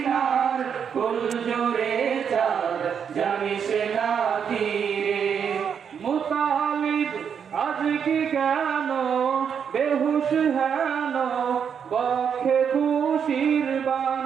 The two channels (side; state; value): left; quieter; 7.4 dB